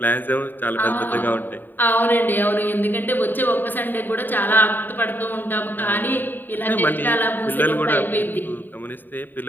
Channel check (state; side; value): late; right; 0.091 ms